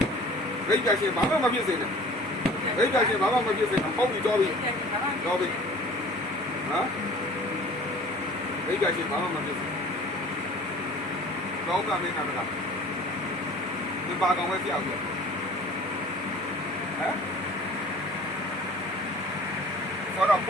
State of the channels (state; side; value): normal; both; correlation 0.47